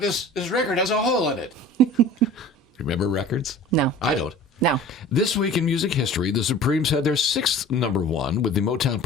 this record has a hole in it. Remember records? No. I don't. No. This week in music history, the Supremes had their 6th #1 with the Motown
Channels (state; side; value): normal; both; correlation 0.42